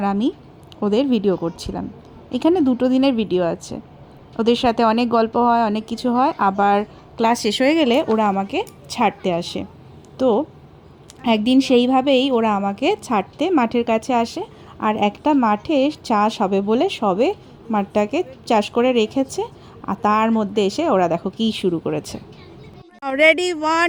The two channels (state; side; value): identical; both; correlation 1.00